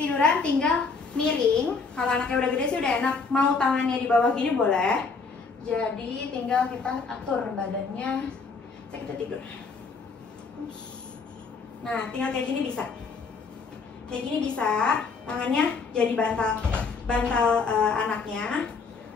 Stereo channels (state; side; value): quieter; right; 4.7 dB